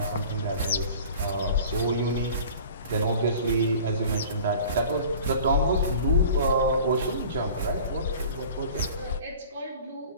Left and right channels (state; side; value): inverted; both; correlation -0.43